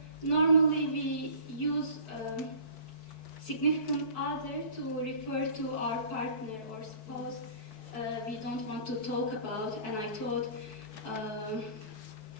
normally we use significant other to refer to our partner or spouse we don't want to talk about, and I thought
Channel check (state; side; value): late; right; 4.6 ms